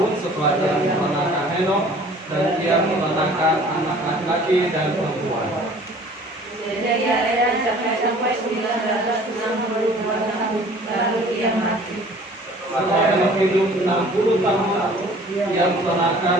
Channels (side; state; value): both; normal; correlation 0.50